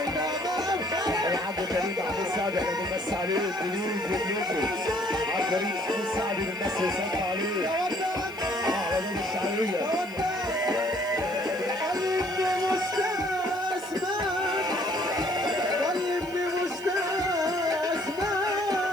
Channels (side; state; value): left; noise; hiss, 23 dB below the sound